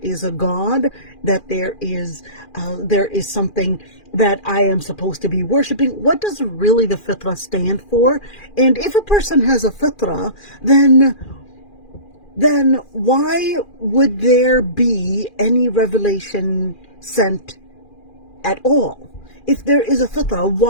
a God, that there is something that I am supposed to be worshiping? What does really the fitrah stand for? And if a person has a fitrah, then then why would there be any revelation sent at all? If there is a fitrah,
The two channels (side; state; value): right; late; 2.4 ms